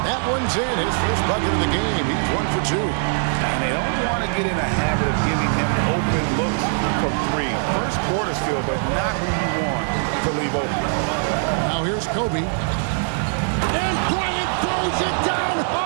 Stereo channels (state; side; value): silent; left; 57 dB below the other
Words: That one's in. His first bucket of the game. He's 1 for 2. And they don't want to get in a habit of giving him open looks from 3. First quarter still, but not who you want to leave open. Now here's Kobe. And Bryant throws it down hard.